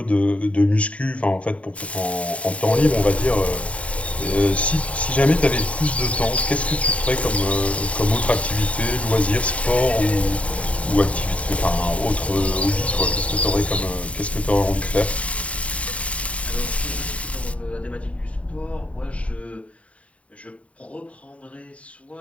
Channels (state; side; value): late; right; 0.065 ms